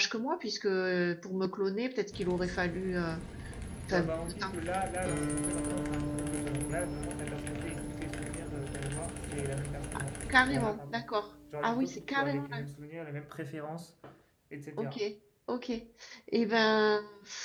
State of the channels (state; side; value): identical; both; correlation 1.00